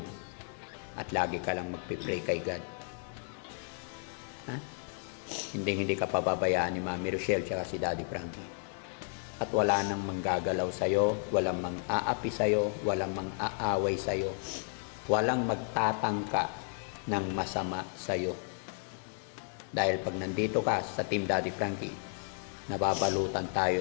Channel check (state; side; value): silent; right; 56 dB below the other